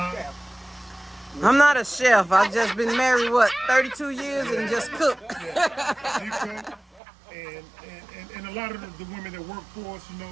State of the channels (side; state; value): left; drops out; at 7.0 s